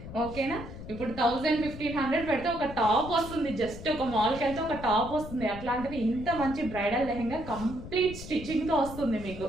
ఓకేనా, ఇప్పుడు 1000-1500 పెడితే ఒక టాప్ వస్తుంది. జస్ట్ ఒక మాల్కి వెళ్తే ఒక టాప్ వస్తుంది. అట్లాంటిది ఇంత మంచి బ్రైడల్ లెహెంగా కంప్లీట్ స్టిచ్చింగ్తో వస్తుంది మీకు.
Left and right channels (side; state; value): left; noise; rumble, 12 dB below the sound